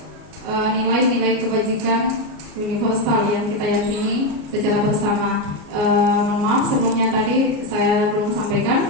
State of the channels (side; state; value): left; late; 33 ms